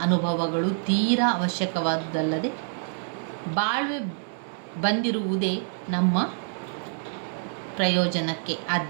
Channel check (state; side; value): silent; left; 56 dB below the other